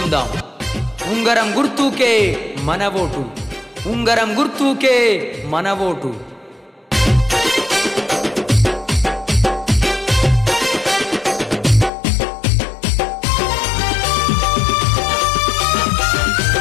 ఉంగరం గుర్తుకే మన ఓటు, ఉంగరం గుర్తుకే మన ఓటు.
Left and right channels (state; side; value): drops out; right; at 11.9 s